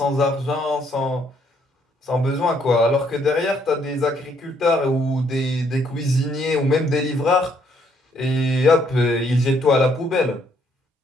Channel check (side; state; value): both; normal; correlation 0.69